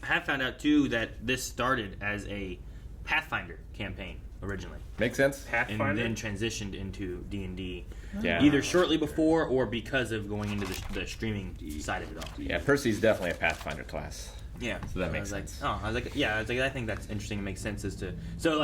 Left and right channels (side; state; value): both; identical; correlation 1.00